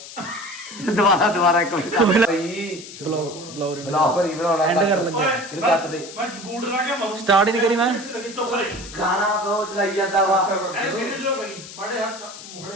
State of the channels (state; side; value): noise; left; hiss, 14 dB below the sound